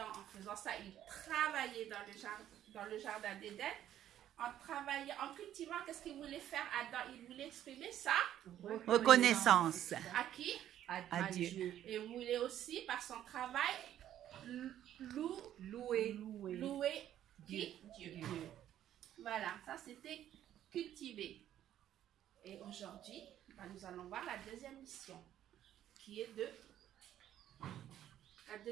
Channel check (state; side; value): quieter; left; 11.5 dB